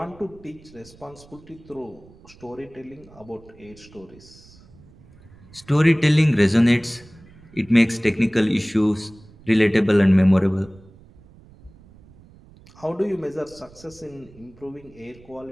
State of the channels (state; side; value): noise; right; rumble, 24 dB below the sound